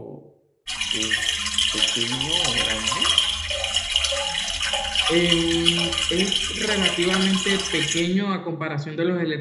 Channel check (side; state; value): both; identical; correlation 1.00